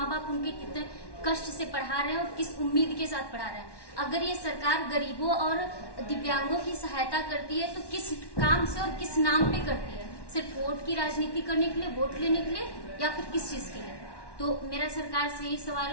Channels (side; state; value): right; late; 1.1 ms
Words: बाप उनके कितने कष्ट से पढ़ा रहे हैं और किस उम्मीद के साथ पढ़ा रहे हैं। अगर ये सरकार गरीबों और दिव्यांगों की सहायता करती है तो किस काम से और किस नाम पे करती है? सिर्फ वोट की राजनीति करने के लिए, वोट लेने के लिए, या फिर किस चीज के लिए? तो मेरा सरकार से यही